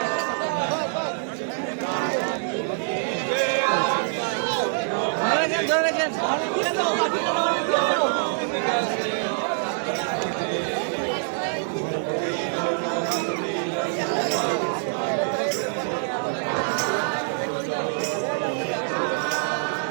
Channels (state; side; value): silent; left; 61 dB below the other